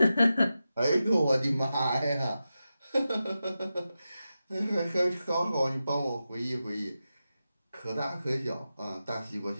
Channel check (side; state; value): both; inverted; correlation -0.91